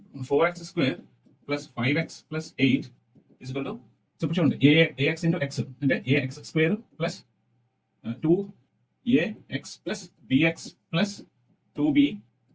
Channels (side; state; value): both; identical; correlation 1.00